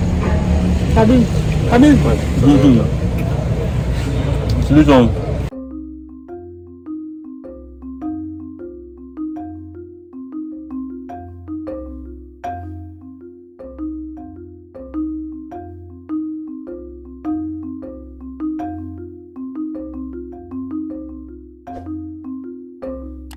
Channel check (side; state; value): both; identical; correlation 1.00